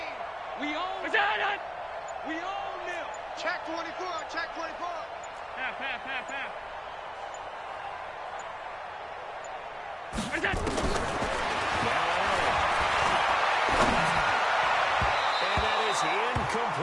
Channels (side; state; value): both; identical; correlation 1.00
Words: We own. Is that it? We own them. Check 24, check 24. Half, half, half, half. What is that? And that is